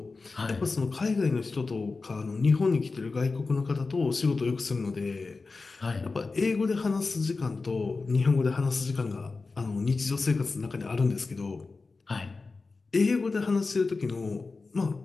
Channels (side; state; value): right; quieter; 4.0 dB